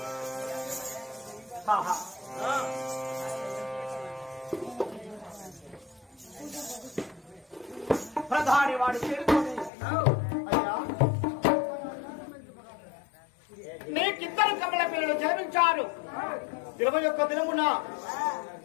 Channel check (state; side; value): drops out; right; at 9.7 s